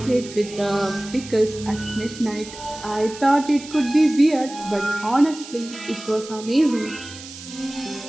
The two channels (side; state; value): right; noise; hiss, 15 dB below the sound